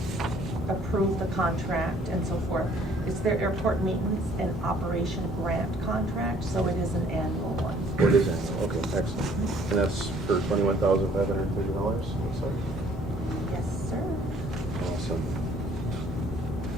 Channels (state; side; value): normal; both; correlation 0.59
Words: approve the contract and so forth. It's their airport maintenance and operation grant contract, so it is an annual one. It is annual, okay, excellent. And that's for $21,530, looks like. Yes, sir. Awesome.